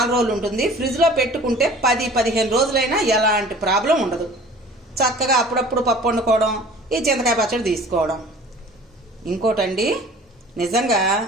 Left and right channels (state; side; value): normal; both; correlation 0.46